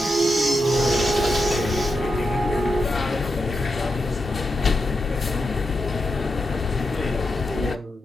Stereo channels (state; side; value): normal; both; correlation 0.86